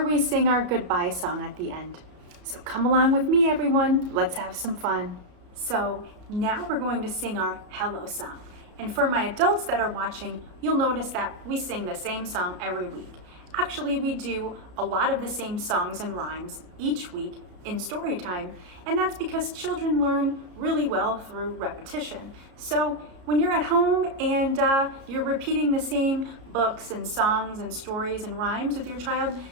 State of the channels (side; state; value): left; late; 33 ms